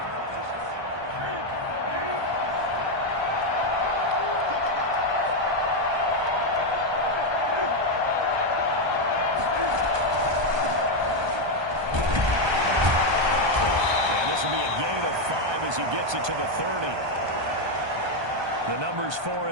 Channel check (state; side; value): late; left; 1.2 ms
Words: As he gets it to the 30. The numbers for